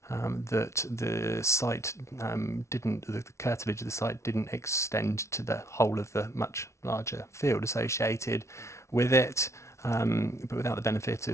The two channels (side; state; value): right; late; 0.13 ms